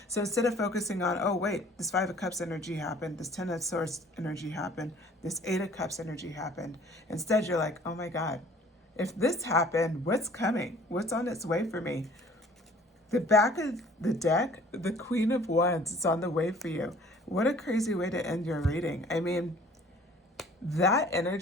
So instead of focusing on, oh, wait, this Five of Cups energy happened, this Ten of Swords energy happened, this Eight of Cups energy happened, instead you're like, oh my God, if this happened, what's coming? What's on its way for me? The back of the deck, the Queen of Wands, is on the way for you. What a crazy way to end your reading. I mean, that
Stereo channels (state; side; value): normal; both; correlation 0.52